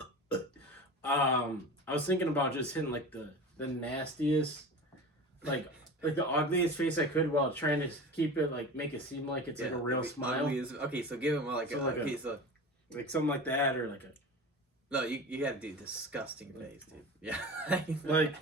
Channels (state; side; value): normal; both; correlation 0.32